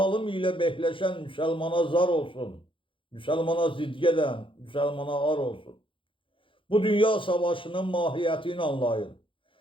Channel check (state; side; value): late; right; 0.25 ms